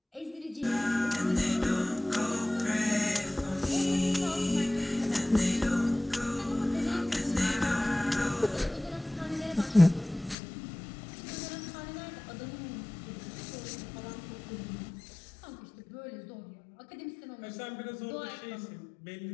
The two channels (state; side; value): drops out; right; at 10.4 s